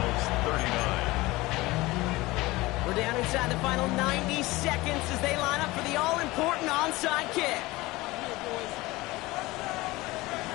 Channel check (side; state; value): right; quieter; 20.4 dB